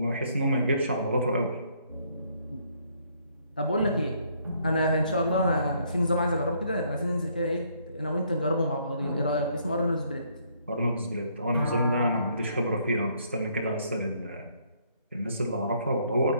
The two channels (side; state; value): both; inverted; correlation -0.68